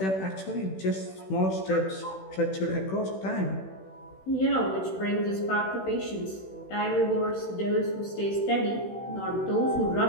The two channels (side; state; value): right; late; 16 ms